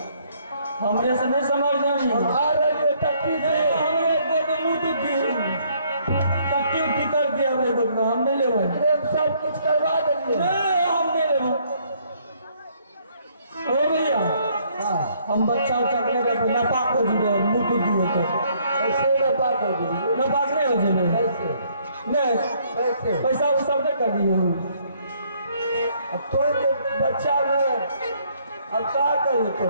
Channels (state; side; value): inverted; both; correlation -0.66